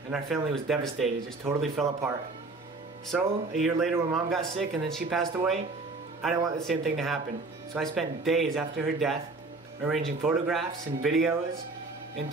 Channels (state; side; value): quieter; left; 3.5 dB